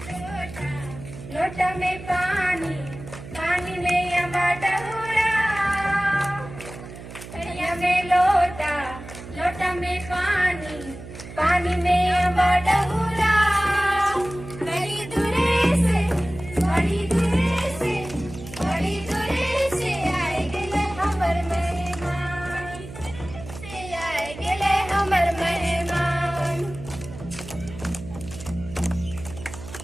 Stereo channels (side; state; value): right; noise; hum, 14 dB below the sound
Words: लोटा में पानी पानी में अम्बा डहुरा कड़िया में लोटा लोटा में पानी पानी में अम्बा डहुरा बड़ी दूरे से बड़ी दूरे से बड़ी दूरे से आए गेले हमर मेहमान से आए गेले हमर मेहमान।